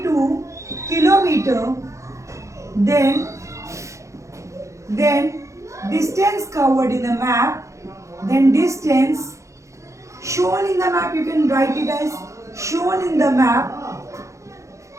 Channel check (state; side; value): late; left; 0.15 ms